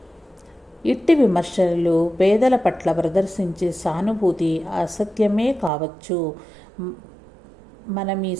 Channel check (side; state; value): left; drops out; at 5.7 s